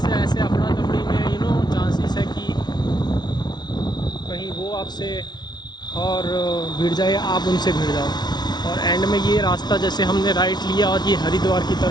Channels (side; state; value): right; late; 0.20 ms